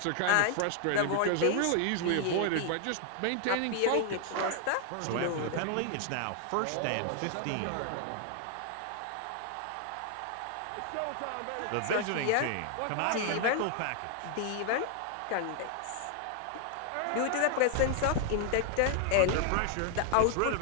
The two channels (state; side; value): different; both; correlation 0.00